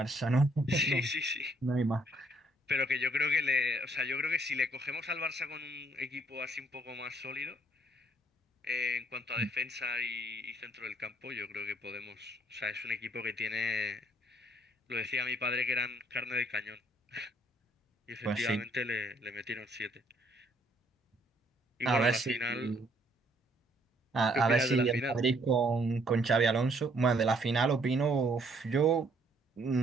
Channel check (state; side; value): normal; both; correlation 0.66